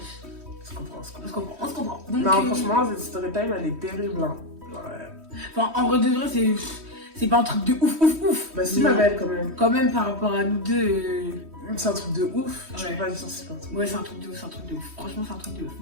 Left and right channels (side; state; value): left; late; 3.1 ms